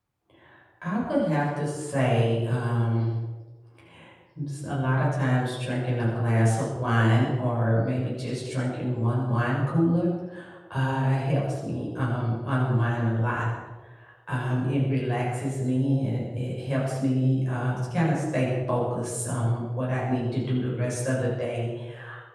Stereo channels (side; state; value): both; identical; correlation 1.00